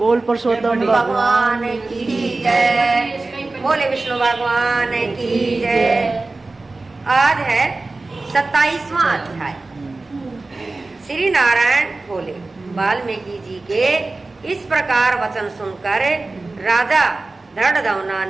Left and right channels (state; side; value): quieter; left; 3.3 dB